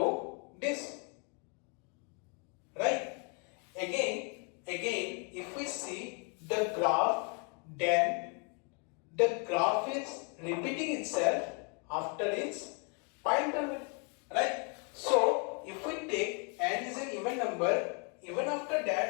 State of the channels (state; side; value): quieter; right; 35.9 dB